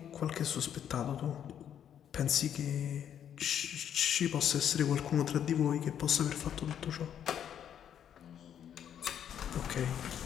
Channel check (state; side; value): quieter; right; 9.3 dB